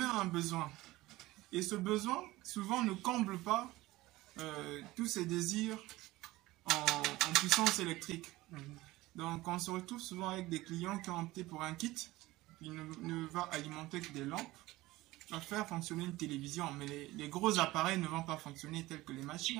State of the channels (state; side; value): quieter; left; 18.6 dB